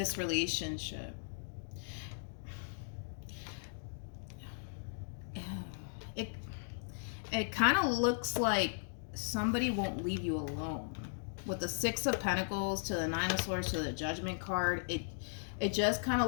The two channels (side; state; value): right; silent; digital silence